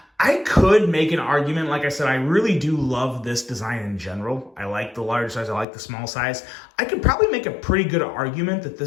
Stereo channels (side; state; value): right; drops out; at 5.7 s